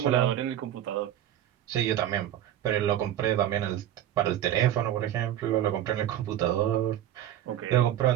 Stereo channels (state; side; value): quieter; left; 11.7 dB